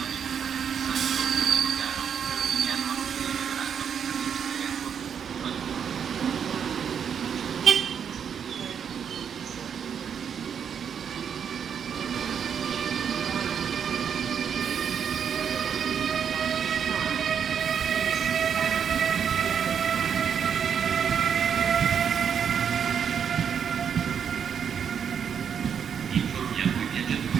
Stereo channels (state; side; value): quieter; left; 7.6 dB